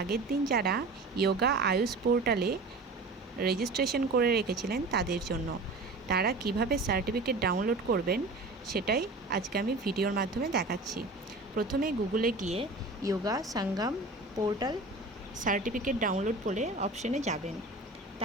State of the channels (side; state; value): left; quieter; 3.2 dB